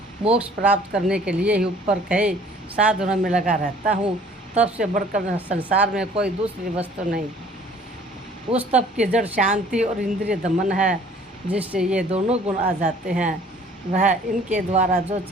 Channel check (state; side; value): normal; both; correlation 0.54